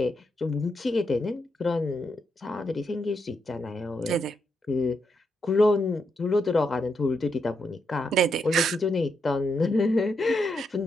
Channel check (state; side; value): normal; both; correlation 0.81